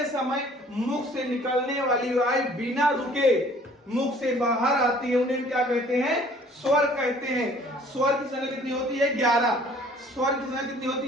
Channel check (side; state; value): both; normal; correlation 0.54